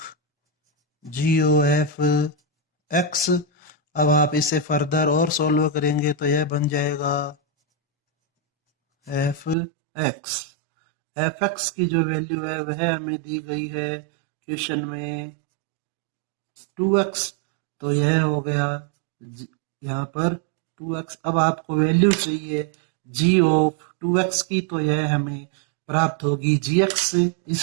जी ओ एफ एक्स। अब आप इसे फर्दर और सॉल्व करेंगे तो यह बन जाएगा एफ एक्स। एफ एक्स की जो वैल्यू है वह हमें दी गई है क्वेश्चन में 2x, तो यह हो गया यहाँ पर 2x। अब आपको वैल्यू चाहिए g ऑफ 2x की, तो यह हमें प्राप्त होगी gx से,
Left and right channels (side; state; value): left; drops out; at 9.6 s